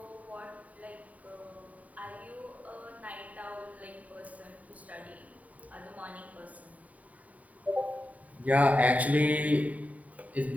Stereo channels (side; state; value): left; late; 0.070 ms